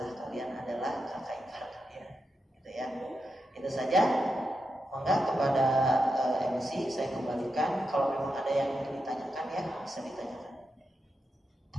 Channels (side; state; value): both; normal; correlation 0.87